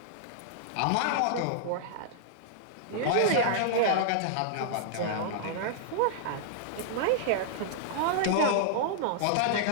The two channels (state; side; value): different; both; correlation -0.01